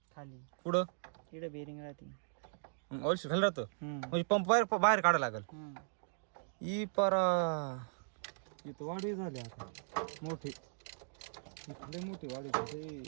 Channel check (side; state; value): left; silent; digital silence